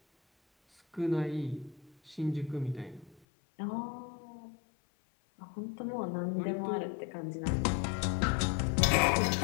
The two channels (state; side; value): drops out; right; at 3.2 s